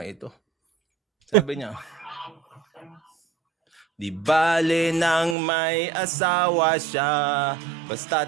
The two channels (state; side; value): drops out; left; at 5.4 s